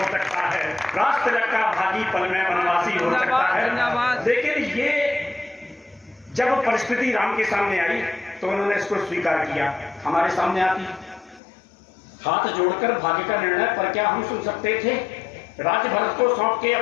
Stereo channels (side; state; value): right; drops out; at 11.4 s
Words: सकता है। राज तिलक का भागी पल में वनवासी हो सकता है। लेकिन ये जब परिस्थिति राम के सामने आई तो उन्होंने इसको स्वीकार किया। हमारे सामने आती हाथ जोड़कर भाग्य का निर्णय पर क्या हम सुन सकते थे। राज भरत को सौंप के